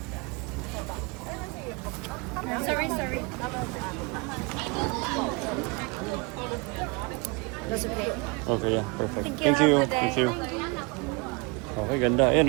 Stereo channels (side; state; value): left; quieter; 29.2 dB